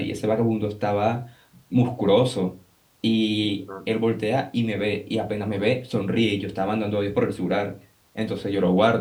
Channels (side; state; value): both; identical; correlation 1.00